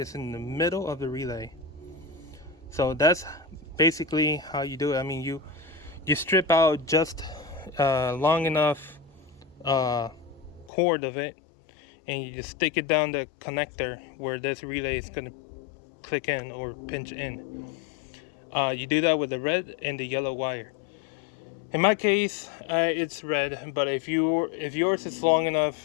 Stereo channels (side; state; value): right; drops out; at 10.7 s